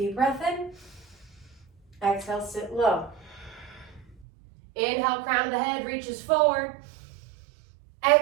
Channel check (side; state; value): left; drops out; at 4.2 s